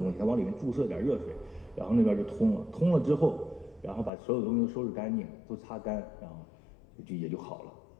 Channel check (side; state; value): right; drops out; at 4.1 s